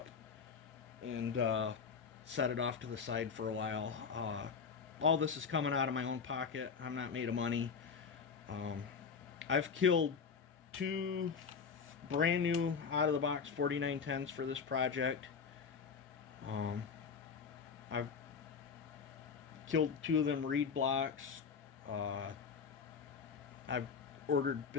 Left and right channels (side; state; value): right; quieter; 5.9 dB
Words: and set it off to the side for a while. All this is coming out of my own pocket. I'm not made of money. I've killed 2 brand new out of the box 4910s for this project. I've killed 2 of them reed blocks. I've ordered